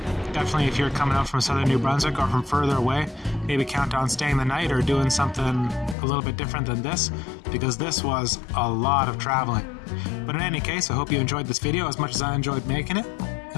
Definitely if you're coming out from southern New Brunswick or from further away, maybe count on staying the night or doing something a little bit different than this, because this was a lot of traveling. But in any case, I hope you enjoyed this video as much as I enjoyed making it,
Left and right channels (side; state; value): right; drops out; at 6.0 s